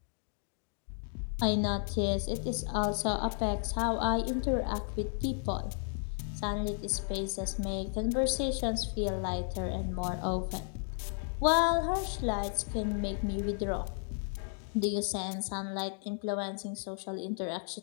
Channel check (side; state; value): right; silent; 55 dB below the other